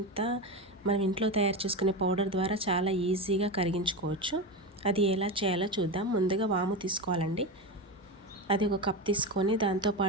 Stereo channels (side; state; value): both; normal; correlation 0.19